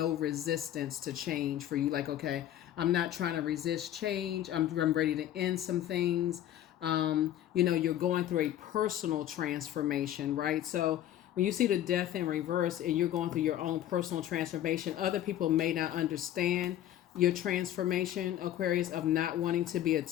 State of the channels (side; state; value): right; quieter; 11.9 dB